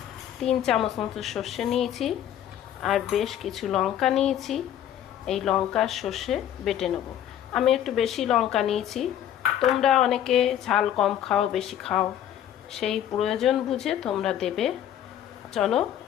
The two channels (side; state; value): right; quieter; 10.8 dB